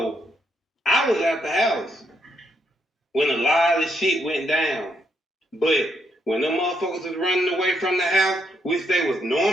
I was at the house when a lot of shit went down. But when them motherfuckers was running away from the house, which they was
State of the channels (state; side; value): normal; both; correlation 0.76